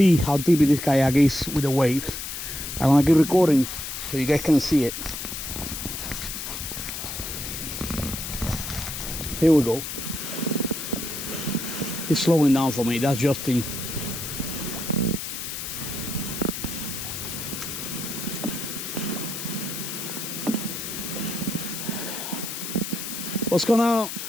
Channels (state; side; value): noise; left; hiss, 6 dB below the sound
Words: how deep this kayak is with the waves. I'm gonna keep recording so you guys can see it. Here we go. It's slowing down for me. That's Justin. What's going on? How